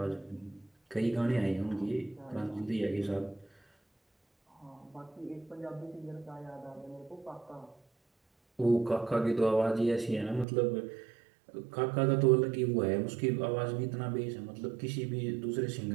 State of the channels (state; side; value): drops out; left; at 10.5 s